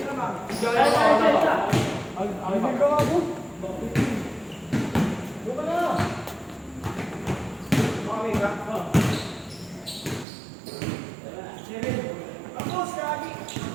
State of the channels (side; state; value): left; drops out; at 10.2 s